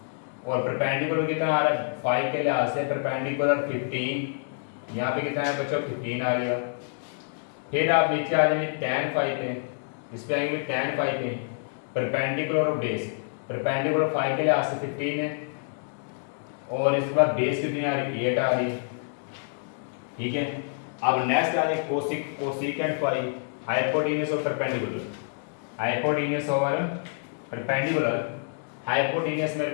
और परपेंडिकुलर कितना आ रहा है फाई के लिहाज से परपेंडिकुलर 15, यहाँ पे कितना है बच्चों 15 आ रहा है। फिर आप नीचे आ जाएंगे tan फाई पे, इस पे आएंगे tan फाई पे, परपेंडिकुलर और बेस, परपेंडिकुलर फाई के लिहाज से 15 है और इसके बाद बेस कितनी आ रही है 8 आ रही है, ठीक है। अब नेक्स्ट आ जाए कोसिक, कोसिकेंट फाई, हाइपोटेन्यूज और परपेंडिकुलर, हाइपोटेन्यूज और परपेंडिकुलर, हाइपोटेन्यूज मेरे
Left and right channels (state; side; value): silent; right; digital silence